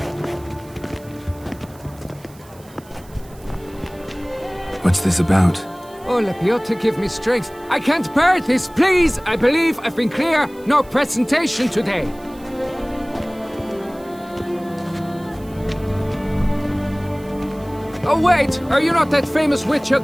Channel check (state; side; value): noise; right; hiss, 25 dB below the sound